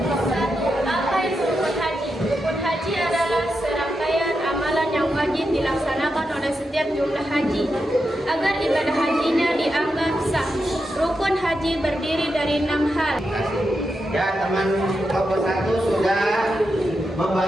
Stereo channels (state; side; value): normal; both; correlation 0.87